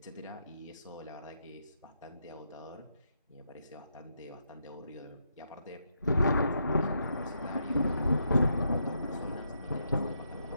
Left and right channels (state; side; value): inverted; both; correlation -0.80